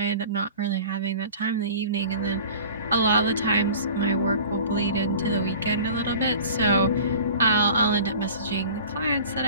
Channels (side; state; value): both; inverted; correlation -0.42